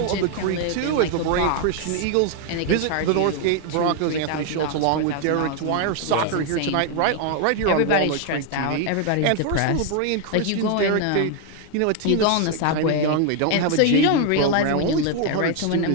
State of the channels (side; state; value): both; different; correlation 0.01